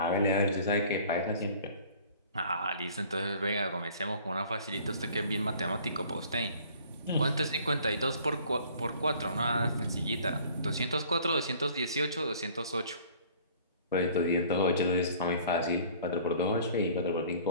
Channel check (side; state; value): both; inverted; correlation -0.52